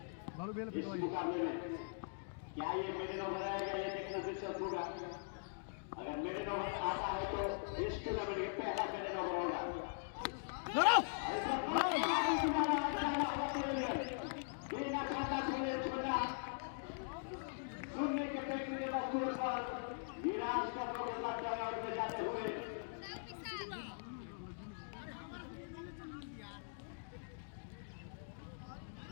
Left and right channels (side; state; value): right; silent; digital silence